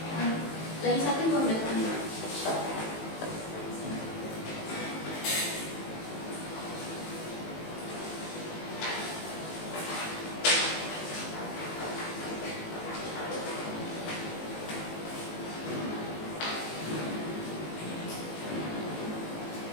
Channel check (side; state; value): right; late; 18 ms